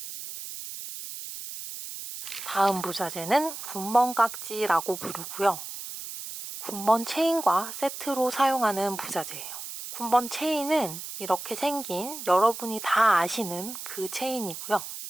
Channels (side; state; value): right; noise; hiss, 9 dB below the sound